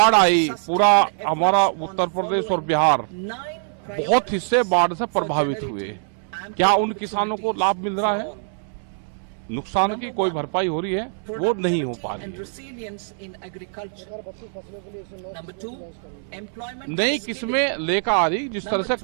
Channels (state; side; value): silent; left; 63 dB below the other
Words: आई, पूरा हमारा उत्तर प्रदेश और बिहार बहुत हिस्से बाढ़ से प्रभावित हुए। क्या उन किसानों को लाभ मिल रहा है? नुकसान की कोई भरपाई हो रही है? वो नहीं हो पा रही है। नई किस्में लेकर आ रही, जिस तरह से